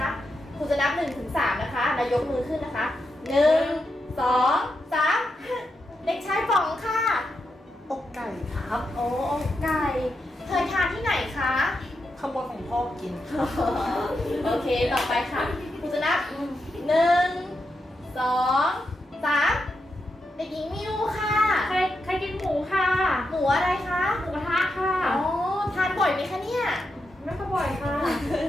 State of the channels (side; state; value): both; normal; correlation 0.85